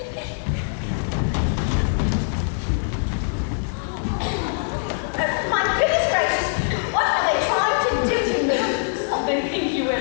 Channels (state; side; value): silent; right; digital silence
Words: My goodness gracious, what are they trying to do to me? They think you wear